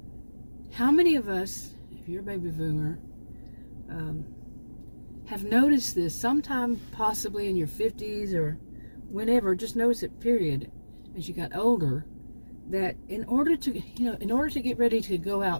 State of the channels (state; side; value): inverted; both; correlation -1.00